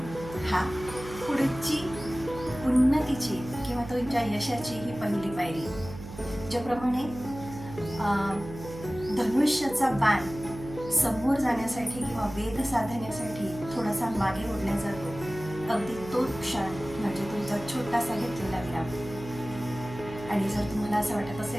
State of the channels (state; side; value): noise; right; hum, 13 dB below the sound